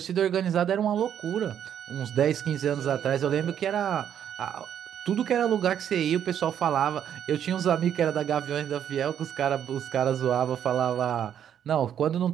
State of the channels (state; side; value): quieter; left; 9.4 dB